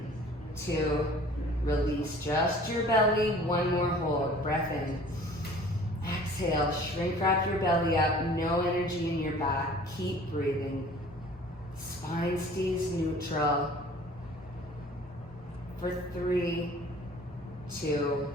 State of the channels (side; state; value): both; normal; correlation 0.48